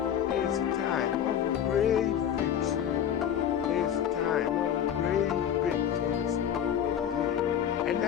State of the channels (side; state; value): right; quieter; 9.4 dB